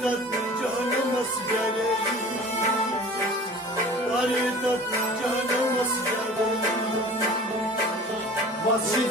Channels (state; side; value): normal; both; correlation 0.43